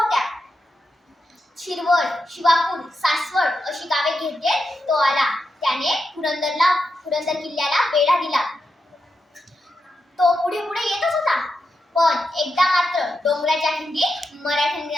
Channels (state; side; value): normal; both; correlation 0.87